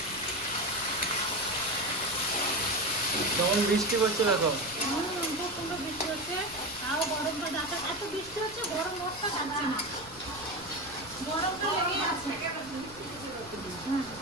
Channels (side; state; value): left; noise; rumble, 20 dB below the sound